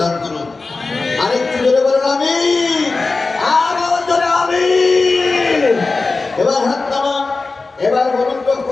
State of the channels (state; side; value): quieter; right; 3.8 dB